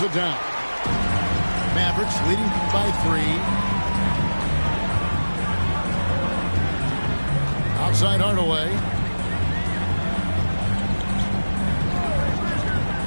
it down. Mavericks leading by 3. Outside Hardaway.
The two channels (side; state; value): both; inverted; correlation -1.00